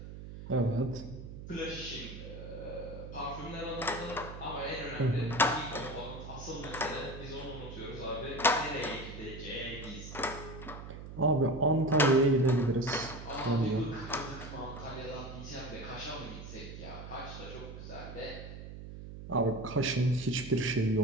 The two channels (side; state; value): right; noise; hum, 11 dB below the sound